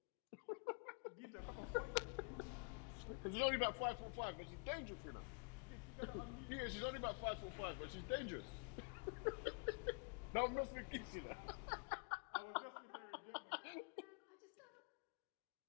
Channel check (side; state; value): right; quieter; 35.7 dB